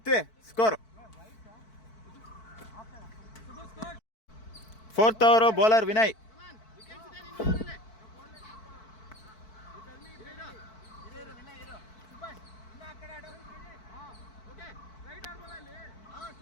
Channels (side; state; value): right; late; 4.6 ms